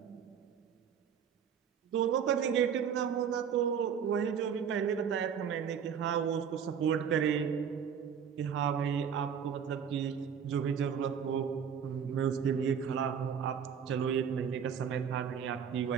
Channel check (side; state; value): left; quieter; 7.6 dB